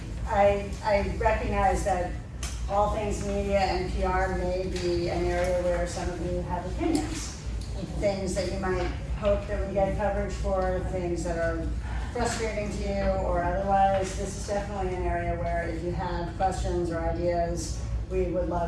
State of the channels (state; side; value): identical; both; correlation 1.00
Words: I recognize that all things media and PR may be an area where some of you have opinions. Things that you might hope that we get coverage for, things that are frustrating to you or otherwise. This is definitely an area where if you have questions or ideas, we would